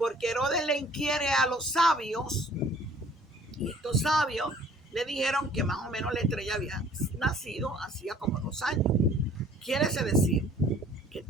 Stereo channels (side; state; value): both; normal; correlation 0.55